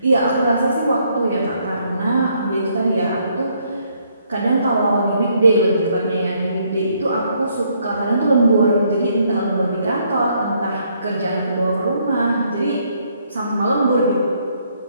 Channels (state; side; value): inverted; both; correlation -0.70